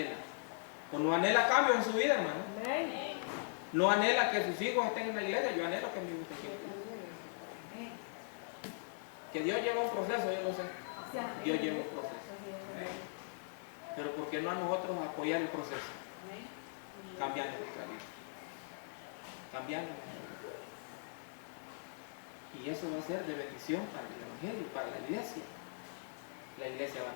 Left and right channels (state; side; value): silent; right; 51 dB below the other